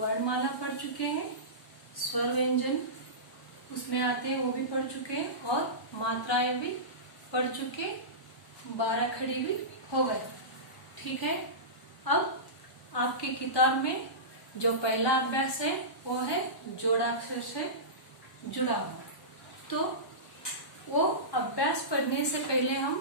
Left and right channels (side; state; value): right; late; 1.0 ms